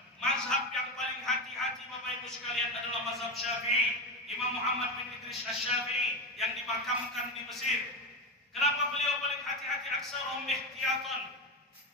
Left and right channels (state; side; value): normal; both; correlation 0.16